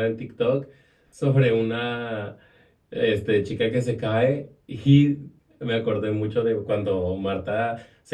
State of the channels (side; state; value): both; identical; correlation 1.00